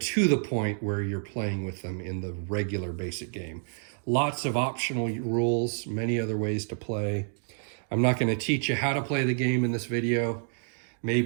the point where you're playing with them in the regular basic game. Lots of optional rules, many other ways to play. I'm not going to teach you how to play the game in this video.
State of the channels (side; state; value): left; silent; digital silence